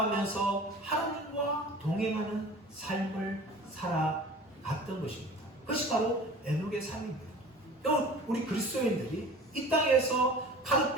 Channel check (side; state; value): both; normal; correlation 0.41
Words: 하나님과 동행하는 삶을 살아갔던 것입니다. 그것이 바로 에녹의 삶입니다. 우리 그리스도인들이 이 땅에서